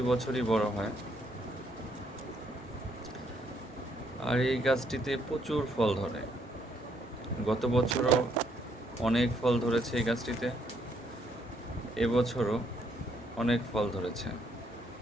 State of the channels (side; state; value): both; normal; correlation 0.71